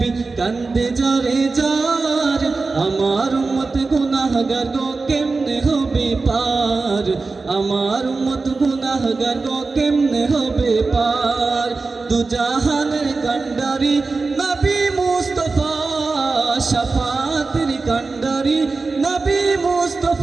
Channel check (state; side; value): quieter; left; 3.9 dB